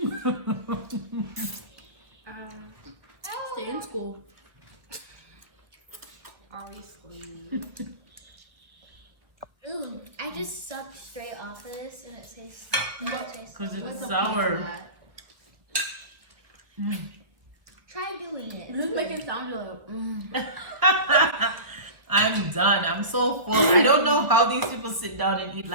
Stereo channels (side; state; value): left; late; 1.4 ms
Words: Stay in school. Obviously. Ooh, I just sucked straight off of this and it tastes. Because it's sour. Try doing it. Just make it sound like. I'm done. I'm so full. I don't know how these people sit down and eat